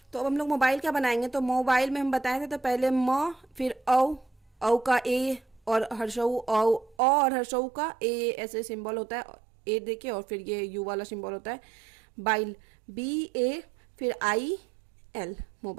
तो अब हम लोग मोबाइल का बनाएंगे। तो मोबाइल में हम बताए थे तो पहले म, फिर औ का ए, और हर्षऊ और हर्षऊ का ए ऐसे सिंबल होता है, ए देके, और फिर ये यू वाला सिंबल होता है। बाइल, BA, फिर IL,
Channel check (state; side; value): drops out; left; at 7.0 s